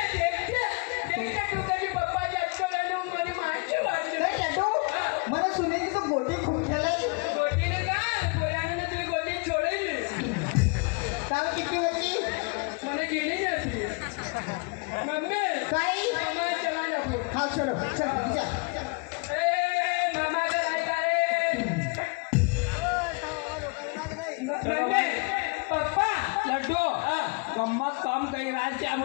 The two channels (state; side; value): quieter; right; 31.6 dB